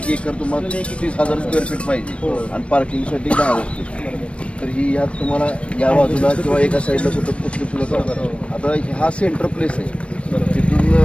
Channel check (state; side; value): late; right; 0.061 ms